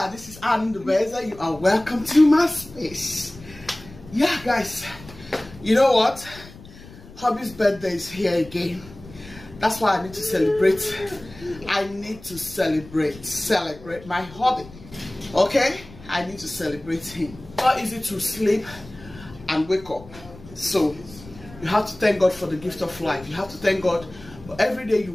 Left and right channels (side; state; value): left; noise; rumble, 19 dB below the sound